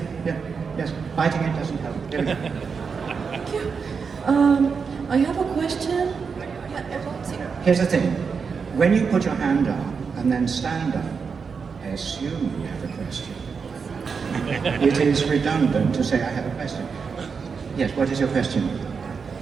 Yeah, yes. Biting it doesn't help. Here we go. Thank you. I have a question. Here's the thing. When you put your hand up and then stand up, I assume you have a question. It is redundant to say I have a question. Yes, what is your question?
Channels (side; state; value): left; quieter; 5.6 dB